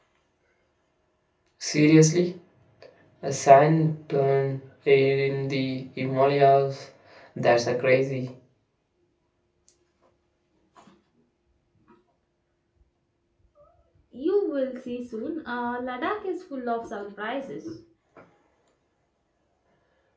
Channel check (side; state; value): both; identical; correlation 1.00